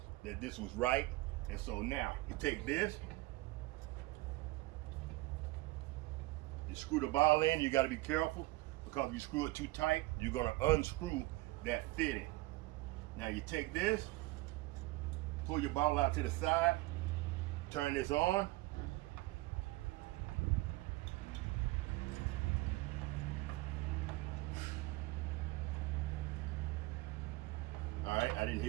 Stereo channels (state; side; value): quieter; left; 20.4 dB